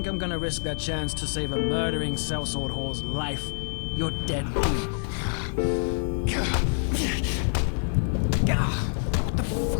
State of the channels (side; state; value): right; silent; 60 dB below the other